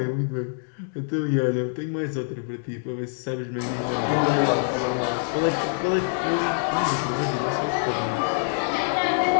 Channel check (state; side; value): silent; right; digital silence